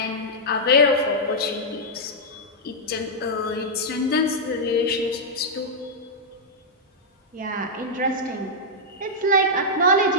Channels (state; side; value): normal; both; correlation -0.07